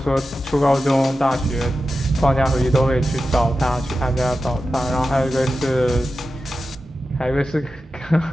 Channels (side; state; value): both; normal; correlation 0.92